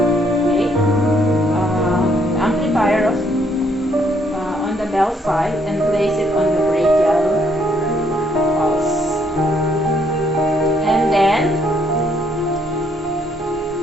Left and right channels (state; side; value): normal; both; correlation 0.69